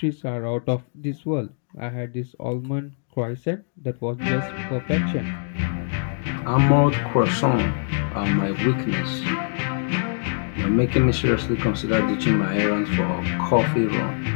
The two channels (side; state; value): right; silent; digital silence